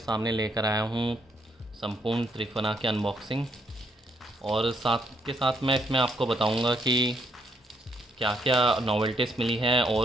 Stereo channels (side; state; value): both; normal; correlation 0.73